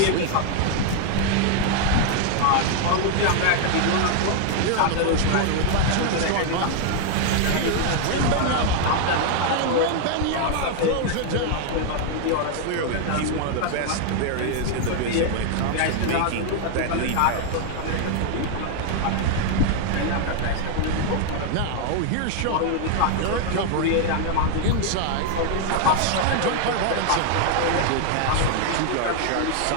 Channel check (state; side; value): different; both; correlation 0.00